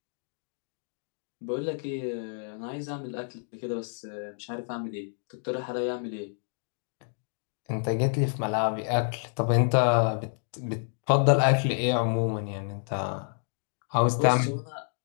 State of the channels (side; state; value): right; silent; 59 dB below the other